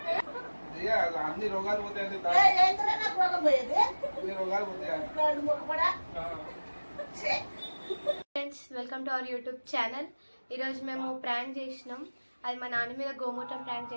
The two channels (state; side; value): inverted; both; correlation -1.00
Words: అన్ని రోగాలు పోతాయండి. రోగాలు పోతాయి. Friends, welcome to our YouTube channel. ఈరోజు మేము ప్రాంక్ చేసినాం. అది మా నాన్న మీద గోమూత్రం ప్రాంక్